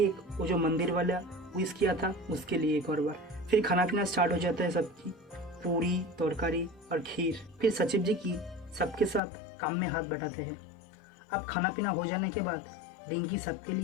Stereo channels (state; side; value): drops out; right; at 9.2 s